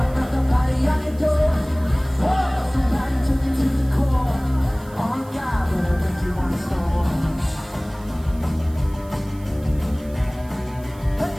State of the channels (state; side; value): noise; right; hiss, 25 dB below the sound